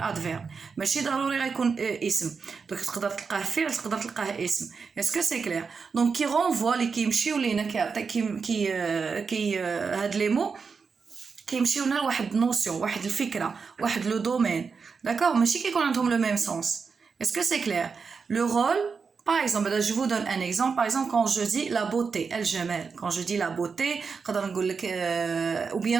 ماشي ضروري غيكون اسم دونك تقدر تلقاه فعل تقدر تلقاه اسم اسكو سي كلير دونك كي رونفوا لي كيمشيو لينا كي هاد لي مو كيمشيو لنا لواحد نوسيون واحد الفكره واحد لو دومين داكور ماشي كيكون عندهم لو ميم سونس اسكو سي كلير لو رول par exemple je vous donne un exemple par exemple quand je dis la beauté الجمال quand je dis la beauté نقدر نقول لك ou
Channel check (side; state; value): left; quieter; 5.3 dB